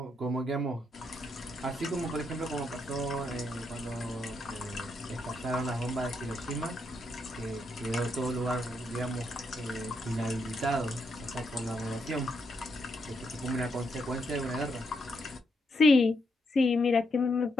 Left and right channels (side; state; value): both; normal; correlation 0.79